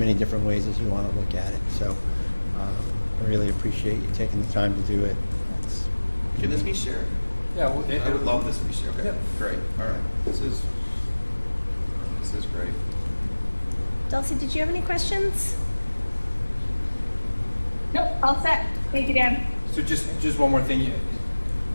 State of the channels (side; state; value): both; inverted; correlation -1.00